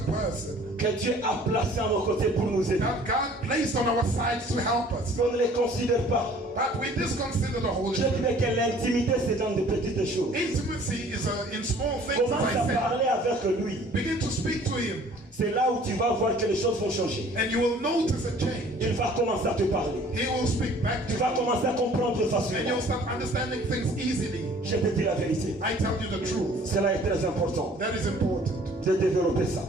person que Dieu a placée à nos côtés pour nous aider. that God placed on our sides to help us. On ne les considère pas. But we disconsider the Holy Je Spirit. dirais que l'intimité, c'est dans de petites choses. Intimacy is in small things, Commence as à I parler avec lui. said. Begin to speak to Him, C'est là où tu vas voir que les choses vont changer. and you will notice a change. Il va commencer à te parler. He will speak back to Tu vas you, commencer à comprendre and facilement. you'll start understanding things easily. Je te dis la vérité. I tell you the truth. Cela est très important That is important de développer ça.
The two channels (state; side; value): normal; both; correlation 0.53